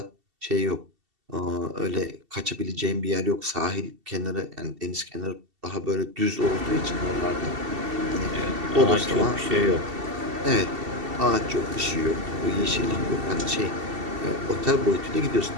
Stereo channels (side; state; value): left; late; 2.7 ms